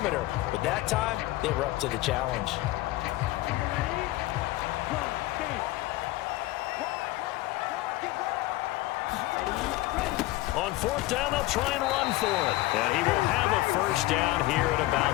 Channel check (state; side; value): quieter; right; 18.1 dB